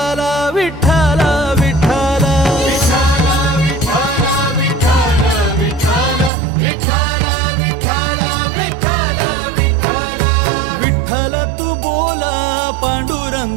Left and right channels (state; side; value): drops out; left; at 6.3 s